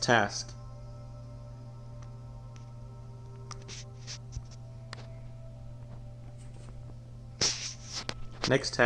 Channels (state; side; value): identical; both; correlation 1.00